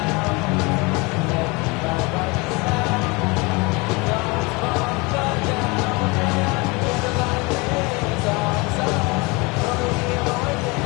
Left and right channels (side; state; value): right; quieter; 26.7 dB